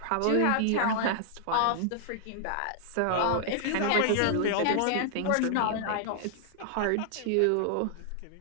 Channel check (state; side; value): different; both; correlation -0.01